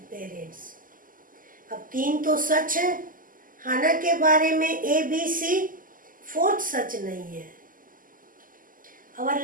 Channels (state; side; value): late; left; 0.40 ms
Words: parents. अब 3 तो सच है हाना के बारे में, A, B, C. 4th सच नहीं है. Our